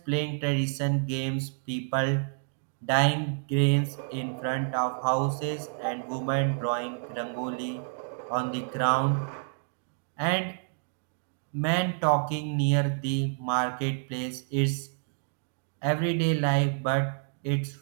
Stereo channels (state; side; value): silent; left; digital silence